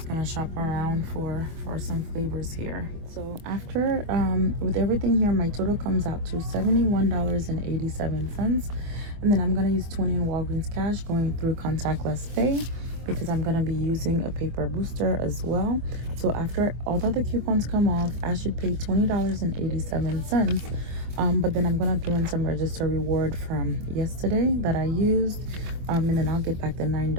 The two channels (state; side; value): late; left; 25 ms